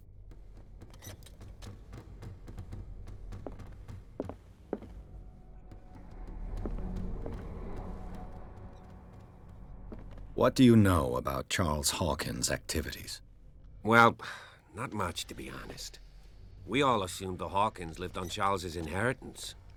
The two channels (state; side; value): identical; both; correlation 1.00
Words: What do you know about Charles Hawkins' activities? Well, not much, to be honest. We all assumed the Hawkins lived on Charles's inheritance.